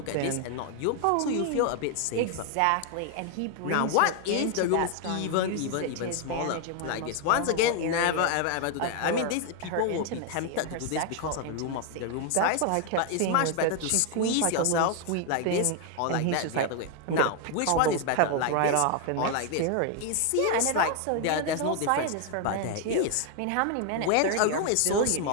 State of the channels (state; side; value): different; both; correlation 0.00